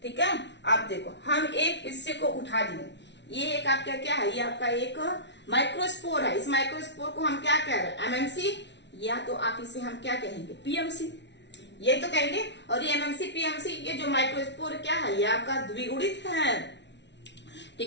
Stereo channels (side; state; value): right; late; 0.51 ms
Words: ठीक है, आप देखो हम एक हिस्से को उठा लिए। ये एक आपका क्या है, ये आपका एक माइक्रोस्पोर है। इस माइक्रोस्पोर को हम क्या कह रहे हैं, एमएमसी, या तो आप इसे हम क्या कहेंगे, पीएमसी, ये तो कहेंगे। और ये एमएमसी पीएमसी, ये जो माइक्रोस्पोर क्या है, ये आपका द्विगुणित है।